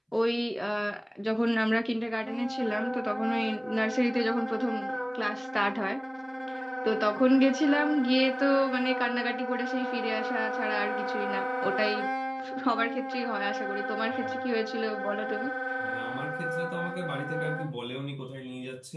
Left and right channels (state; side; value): identical; both; correlation 1.00